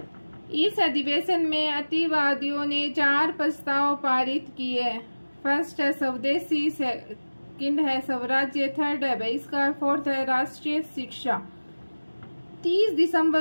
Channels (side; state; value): both; inverted; correlation -1.00